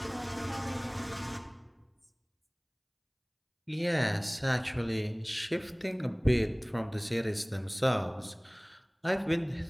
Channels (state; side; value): identical; both; correlation 1.00